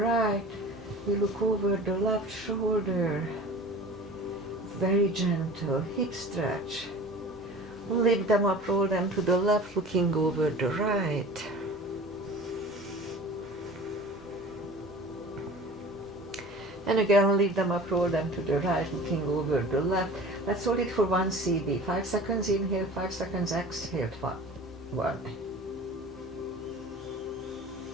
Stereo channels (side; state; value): both; normal; correlation 0.40